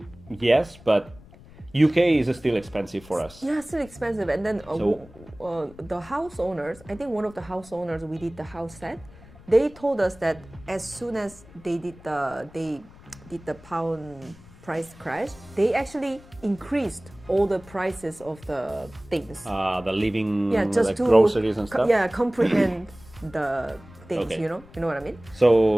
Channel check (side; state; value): left; noise; rumble, 22 dB below the sound